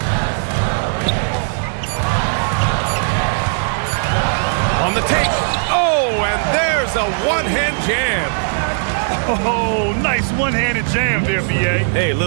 On the take. Oh, and there's a one-hand jam. Oh, nice one-handed jam there, B.A. Hey,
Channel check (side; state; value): left; silent; digital silence